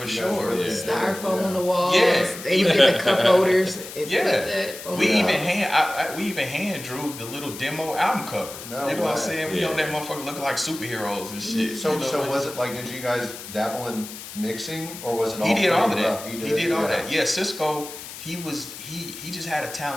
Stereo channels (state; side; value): noise; left; hiss, 12 dB below the sound